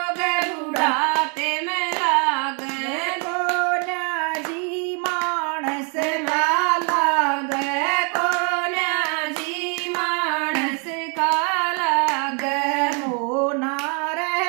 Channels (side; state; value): left; quieter; 38.0 dB